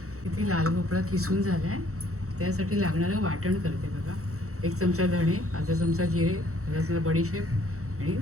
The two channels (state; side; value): late; left; 0.64 ms